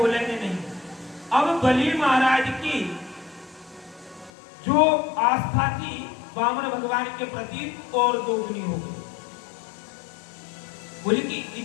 नहीं। अब बलि महाराज की जो आस्था थी वामन भगवान के प्रति और दोगुनी हो गई। बोले कि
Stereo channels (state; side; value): drops out; right; at 4.3 s